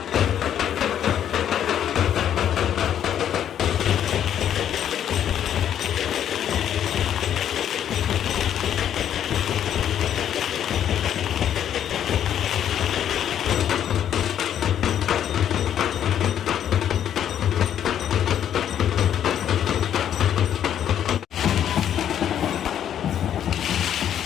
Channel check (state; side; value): quieter; right; 10.0 dB